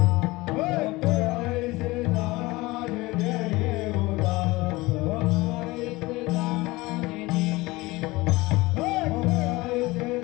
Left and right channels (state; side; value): quieter; right; 21.2 dB